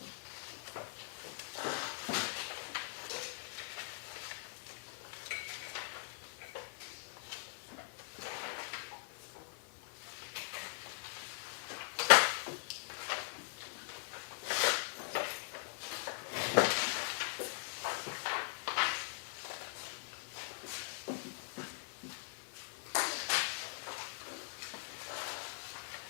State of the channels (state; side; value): silent; right; digital silence